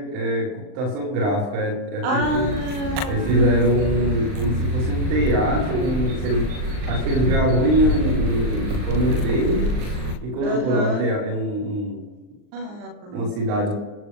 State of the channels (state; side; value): late; left; 39 ms